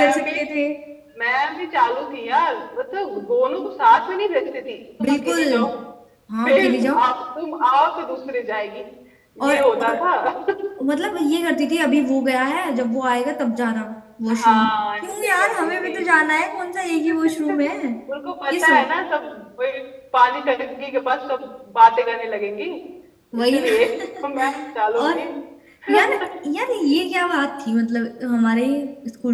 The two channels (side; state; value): both; identical; correlation 1.00